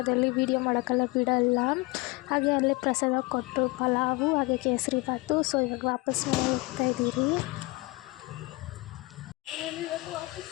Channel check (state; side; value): quieter; right; 23.8 dB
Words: ವೀಡಿಯೋ ಮಾಡೋಕ್ಕೆಲ್ಲ ಬಿಡಲ್ಲ. ಹಾಗೆ ಅಲ್ಲೇ ಪ್ರಸಾದ ಕೊಟ್ಟು ಪಲಾವು ಹಾಗೆ ಕೇಸರಿ ಬಾತು. ಸೊ ಇವಾಗ ವಾಪಸ್ ಹೋಗ್ತಾಯಿದ್ದೀರಿ.